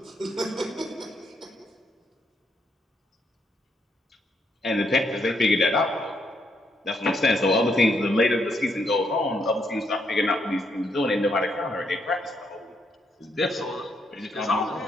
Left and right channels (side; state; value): both; normal; correlation 0.76